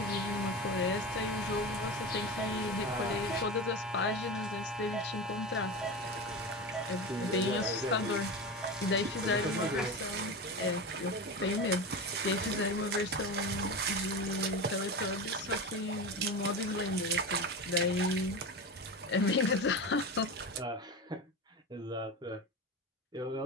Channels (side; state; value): both; normal; correlation 0.24